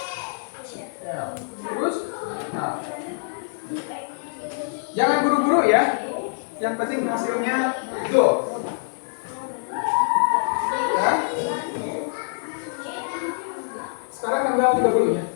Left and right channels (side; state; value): right; silent; digital silence